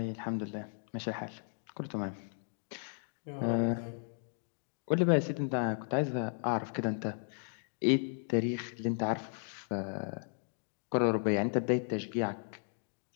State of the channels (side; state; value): right; silent; 54 dB below the other